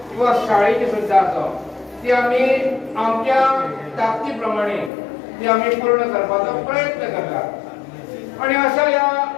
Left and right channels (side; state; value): right; drops out; at 4.9 s